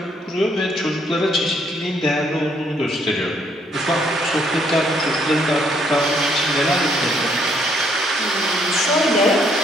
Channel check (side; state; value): both; normal; correlation 0.69